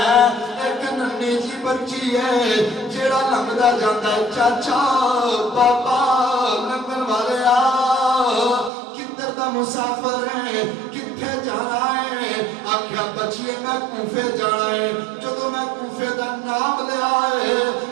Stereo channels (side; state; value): left; drops out; at 8.7 s